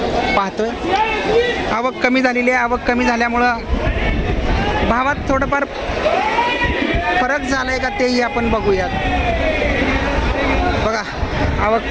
पाहतोय। आवक कमी झालेली आहे। आवक कमी झाल्यामुळं भावात थोडंफार फरक झालाय का तेही आपण बघूयात। बघा आवक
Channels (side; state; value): both; identical; correlation 1.00